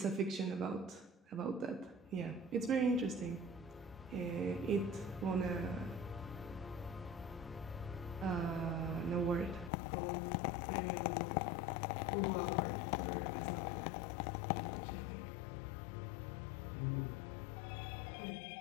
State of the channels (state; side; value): drops out; right; at 9.7 s